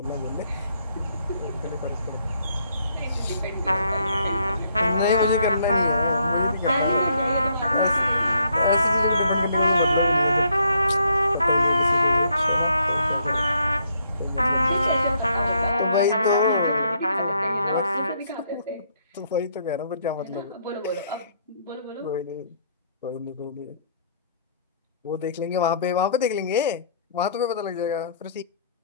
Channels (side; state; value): both; inverted; correlation -0.69